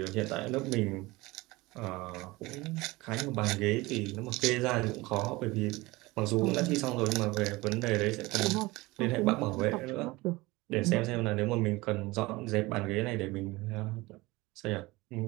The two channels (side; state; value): left; quieter; 21.5 dB